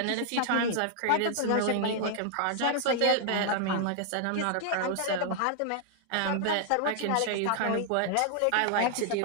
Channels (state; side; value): different; both; correlation 0.00